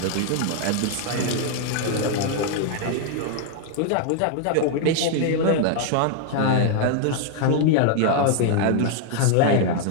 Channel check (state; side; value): different; both; correlation 0.00